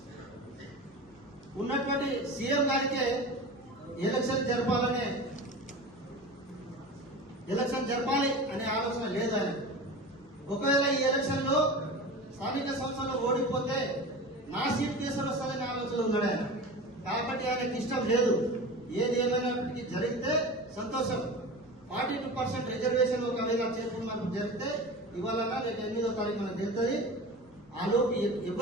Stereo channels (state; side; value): noise; left; hum, 30 dB below the sound